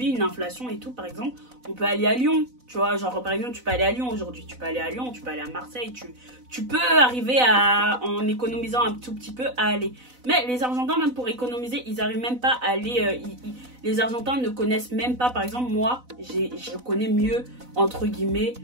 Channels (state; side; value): late; left; 4.0 ms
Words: une inflation et tout, par exemple on peut aller à Lyon, tu vois, genre par exemple tu peux aller à Lyon aujourd'hui, tu peux aller à Lyon, tu peux aller à Marseille, tu peux arriver en économisant un tout petit peu à aller. Mais les Argentins même pour économiser ils arrivent même pas à aller, les Argentins ne connaissent même pas, par exemple moi je connais mieux entre guillemets